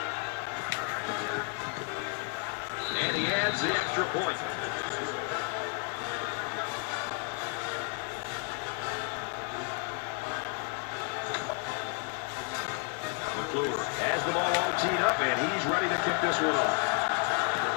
And he adds the extra point. McClure has the ball all teed up, and he's ready to kick this one off.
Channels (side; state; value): right; quieter; 37.7 dB